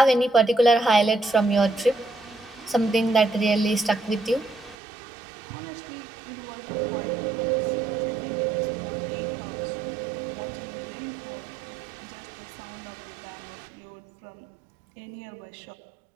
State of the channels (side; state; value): left; drops out; at 4.8 s